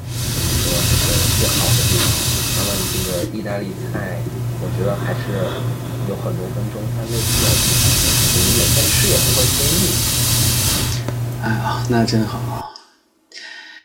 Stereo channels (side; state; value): both; identical; correlation 1.00